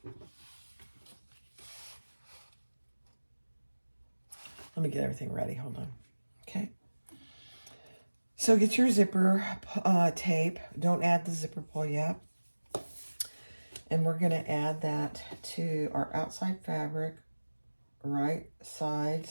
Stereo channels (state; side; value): inverted; both; correlation -1.00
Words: Let me get everything ready. Hold on. Okay. So get your zipper tape. Don't add the zipper pull yet. And we're going to add that to our outside fabric, right